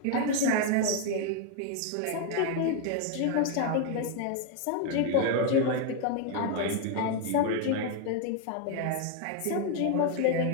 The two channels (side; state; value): both; different; correlation 0.00